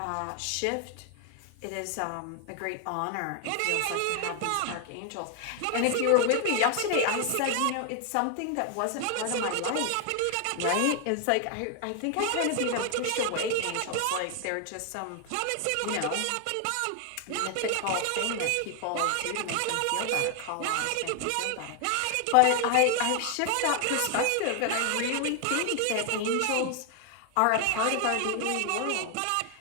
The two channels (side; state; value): both; different; correlation 0.00